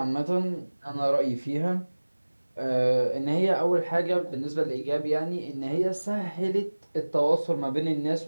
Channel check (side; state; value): both; inverted; correlation -1.00